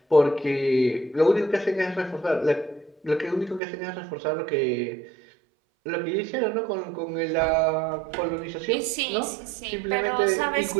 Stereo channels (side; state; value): left; drops out; at 3.6 s